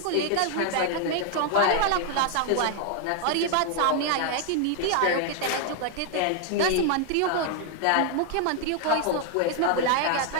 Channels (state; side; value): different; both; correlation 0.00